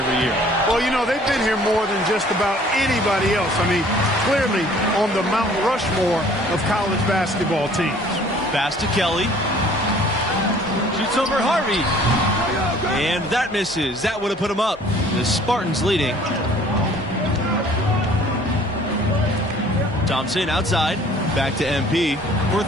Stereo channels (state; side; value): normal; both; correlation 0.54